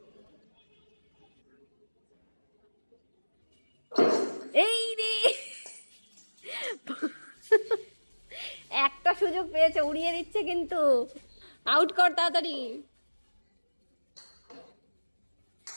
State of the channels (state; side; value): inverted; both; correlation -1.00